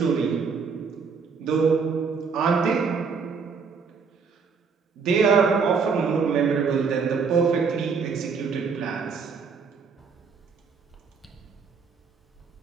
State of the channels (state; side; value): quieter; left; 5.5 dB